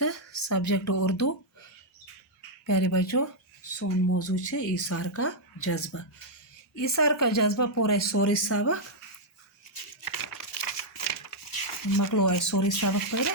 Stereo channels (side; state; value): both; normal; correlation -0.05